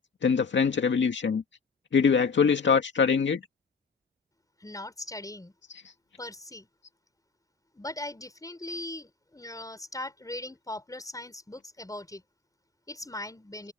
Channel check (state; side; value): quieter; right; 5.3 dB